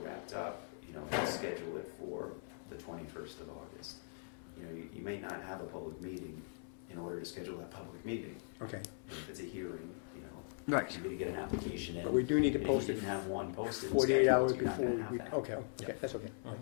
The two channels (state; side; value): silent; right; 51 dB below the other